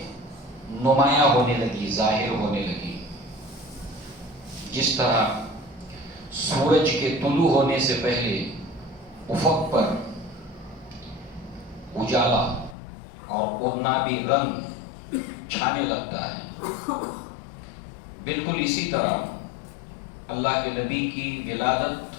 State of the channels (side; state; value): right; drops out; at 12.8 s